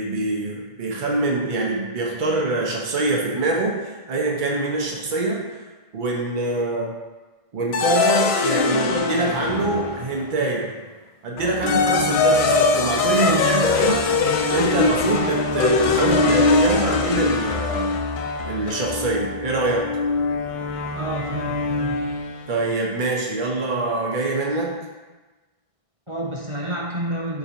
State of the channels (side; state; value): left; late; 1.5 ms